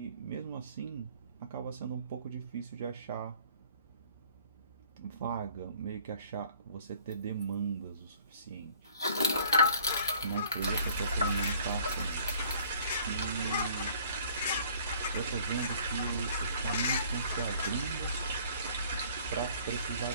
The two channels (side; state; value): both; inverted; correlation -0.56